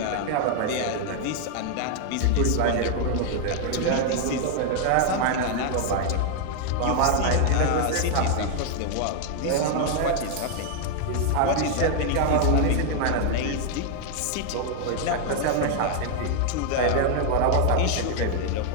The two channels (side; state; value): both; different; correlation 0.00